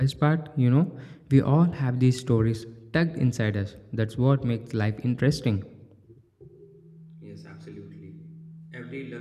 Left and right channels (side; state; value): both; identical; correlation 1.00